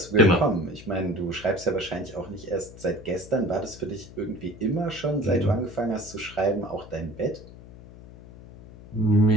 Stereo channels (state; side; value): noise; left; hum, 18 dB below the sound